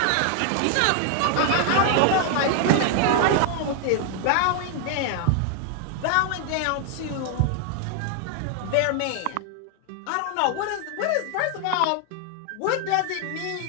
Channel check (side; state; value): both; different; correlation 0.00